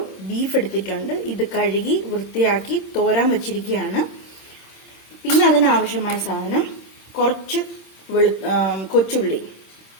ബീഫ് എടുത്തിട്ടുണ്ട്. ഇത് കഴുകി വൃത്തിയാക്കി തോരാൻ വച്ചിരിക്കുകയാണ്. പിന്നെ അതിനാവശ്യമായ സാധനം കുറച്ച് കൊച്ചുള്ളി.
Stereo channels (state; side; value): late; right; 26 ms